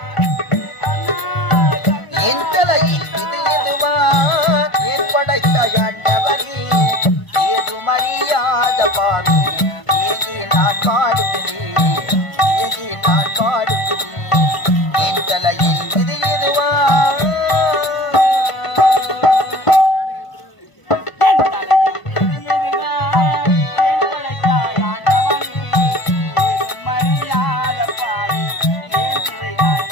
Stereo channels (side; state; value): right; late; 1.0 ms